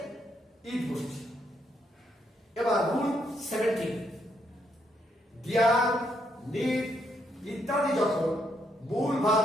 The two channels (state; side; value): normal; both; correlation 0.76